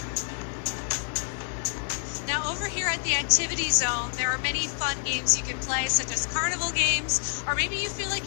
Now, over here at the activity zone, there are many fun games you can play, such as carnival games, or maybe you feel like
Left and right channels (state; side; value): silent; right; digital silence